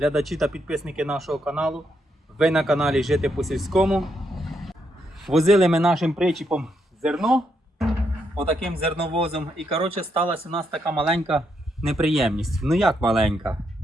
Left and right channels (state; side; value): normal; both; correlation 0.78